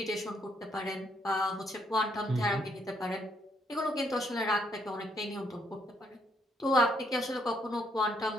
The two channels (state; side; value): normal; both; correlation 0.72